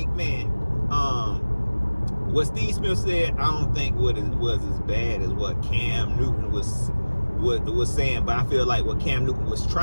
man. What Steve Smith said, I don't think was as bad as what Cam Newton was saying, but I feel like what Cam Newton was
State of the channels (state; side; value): inverted; both; correlation -1.00